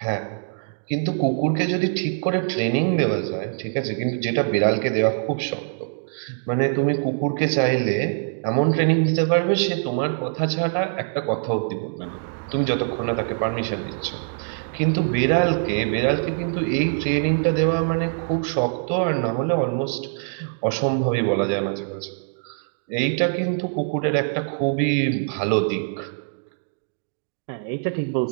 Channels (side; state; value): left; silent; digital silence